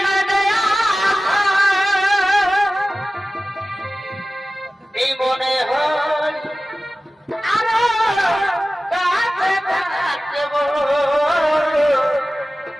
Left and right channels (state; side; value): normal; both; correlation 0.96